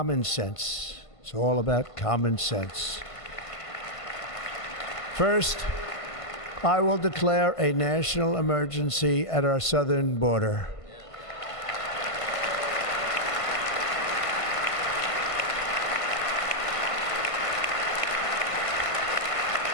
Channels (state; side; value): late; right; 1.5 ms